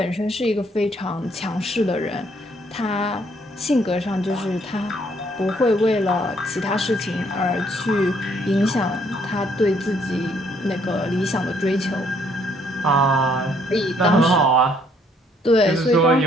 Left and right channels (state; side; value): normal; both; correlation 0.66